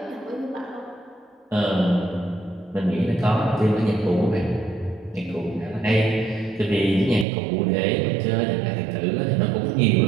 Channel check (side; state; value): left; drops out; at 7.2 s